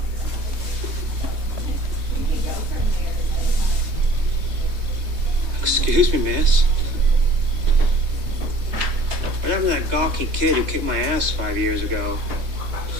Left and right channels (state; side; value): late; left; 3.2 ms